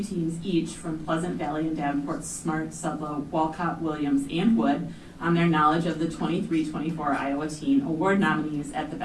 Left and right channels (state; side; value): identical; both; correlation 1.00